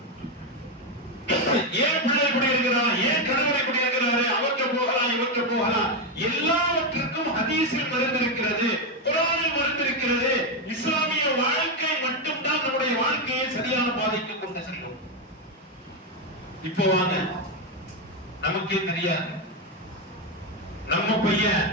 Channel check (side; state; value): both; normal; correlation 0.07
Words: ஏன் பிள்ளை இப்படி இருக்கிறான், ஏன் கணவர் இப்படி இருக்கிறாரு, அவற்றை போகலாம் இவற்றை போகலாம். எல்லாவற்றுக்கும் ஹதீஸில் மறந்திருக்கிறது, குர்ஆனில் மறந்திருக்கிறது. இஸ்லாமிய வாழ்க்கை மட்டும்தான் நம்முடைய வாழ்க்கையை சரியான பாதைக்கு கொண்டு செல்லும். இப்போ வாங்க, நமக்கே தெரியாது, நம்ம பையன்